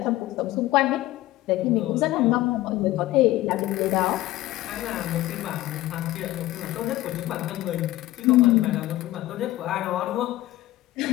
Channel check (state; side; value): quieter; right; 16.3 dB